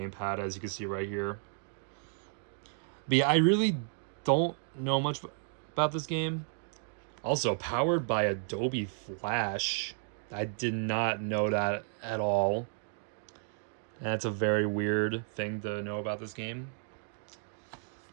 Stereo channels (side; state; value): left; silent; digital silence